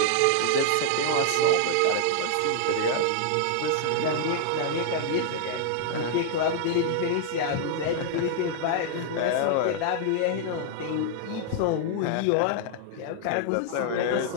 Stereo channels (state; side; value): different; both; correlation -0.01